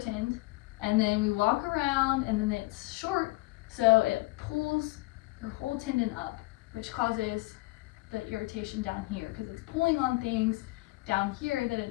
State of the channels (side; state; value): right; quieter; 21.2 dB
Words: and then we walk around, and then it's short, so it pulls your whole tendon up, which causes the irritation down here, because it's pulling on things down here that it